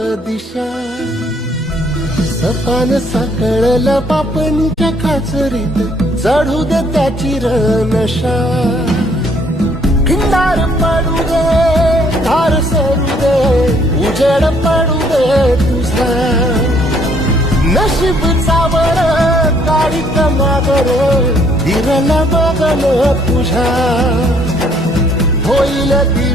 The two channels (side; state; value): both; normal; correlation 0.65